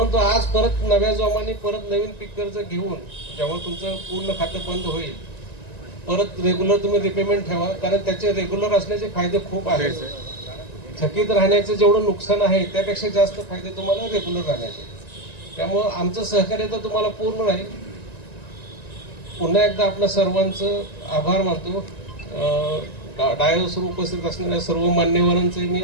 आज परत नव्या जोमाने परत नवीन पीक कर्ज घेऊन जेव्हा तुमचं पूर्ण खातं बंद होईल परत रेग्युलर तुम्ही रिपेमेंट ठेवा, कारण त्याचे रेग्युलर असण्याचे फायदे खूप आहेत. थकीत राहण्याचे जेवढं नुकसान आहे त्यापेक्षा जास्त फायदे तुम्हाला रेग्युलर राहण्याचे. त्यामुळं आमचं सहकार्य तर तुम्हाला पूर्ण राहील. पुन्हा एकदा आपल्या सर्वांचं आभार मानतो. डायसवर उपस्थित असलेल्या सर्व मान्यवरांचे मी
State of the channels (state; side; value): late; right; 1.9 ms